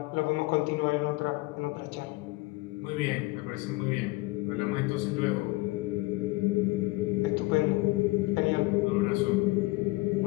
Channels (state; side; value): quieter; right; 22.6 dB